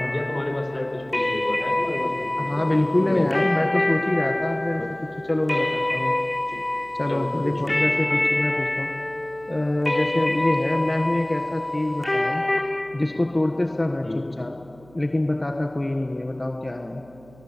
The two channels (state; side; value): noise; right; hum, 25 dB below the sound